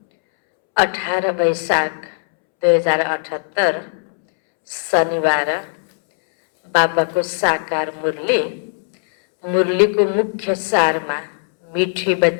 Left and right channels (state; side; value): silent; right; 67 dB below the other